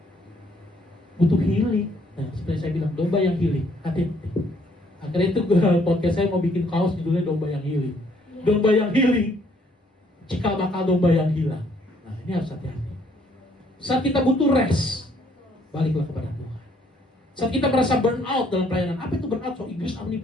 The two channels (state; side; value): normal; both; correlation 0.66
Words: butuh healing. Nah, seperti saya bilang, domba yang healing, hati-hati. Akhirnya itu podcast saya mau bikin kaos judulnya domba yang healing. Domba yang healing, cikal bakal domba yang hilang. Nah, ini harus hati-hati. Saat kita butuh rest, baliklah kepada Tuhan. Saat kita merasa burn out dalam pelayanan, apa itu burn out? So Inggris apa nih